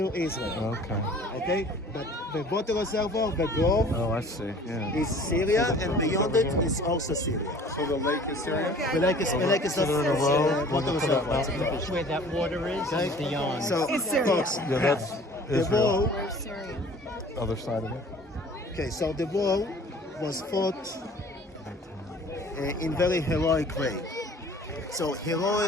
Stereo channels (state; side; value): normal; both; correlation 0.48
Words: Israel. Okay, but the water reservoir, the grove, I see. Yeah. is Syria, and beyond it is also Syria. So the lake is Syria? The lake is not water reservoir. Where that water is beyond. So, folks, Yeah, that's the Israel. war, Other side of it. okay, so the war was fought in very heroic way. So